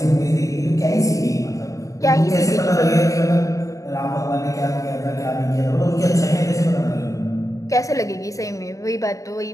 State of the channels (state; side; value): late; right; 0.16 ms